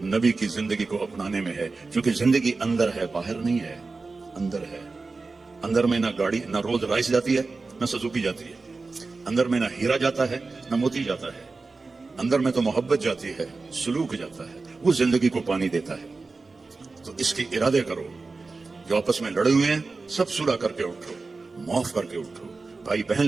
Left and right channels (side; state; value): left; quieter; 3.9 dB